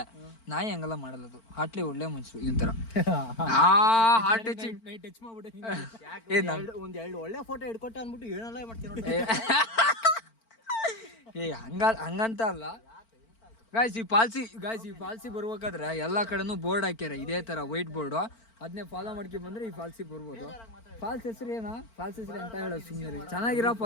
ನಾಯಿ ಹಂಗೆಲ್ಲ ಮಾಡಲ್ಲ. ಅದು ಹಾಟ್ಲಿ ಒಳ್ಳೆ ಮನ್ಸು. ಇವನ್ ತರ ಹಾರ್ಟ್ ಟಚಿಂಗ್ ಟಚ್ ಮಾಡ್ಬಿಟ್ಟೆ. ಒಂದ್ 2 ಒಳ್ಳೆ ಫೋಟೋ ಹಿಡ್ಕೊಟ್ಟೆ ಅಂದ್ಬಿಟ್ಟು ಏನೆಲ್ಲ ಮಾಡ್ತೀನಿ. ಹಂಗಂತ ಅಲ್ಲ ಗಾಯ್ಸ್. ಈ ಫಾಲ್ಸಿ ಬರ್ಬೇಕಾದ್ರೆ ಎಲ್ಲಾ ಕಡೆನೂ ಬೋರ್ಡ್ ಹಾಕ್ಯಾರ. ಇದೇ ತರ ವೈಟ್ ಬೋರ್ಡ್. ಅದನ್ನೇ ಫಾಲೋ ಮಾಡ್ಕೊಂಡ್ ಬಂದ್ರೆ ಈ ಫಾಲ್ಸಿ ಬರ್ಬೋದು. ಫಾಲ್ಸ್ ಹೆಸರು ಏನ? ಫಾಲ್ಸ್ ಹೆಸರು ಅಂತ ಹೇಳೋದು ಸುಮ್ಮನೆ. ಚೆನ್ನಾಗಿರೋ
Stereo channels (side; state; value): right; late; 4.4 ms